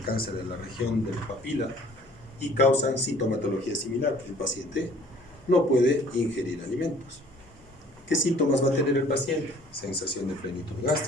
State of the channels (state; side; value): normal; both; correlation 0.54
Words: cáncer de la región de la papila y causan sintomatología similar. El paciente no puede ingerir alimentos. ¿Qué síntomas va a tener el paciente? Sensación de plenitud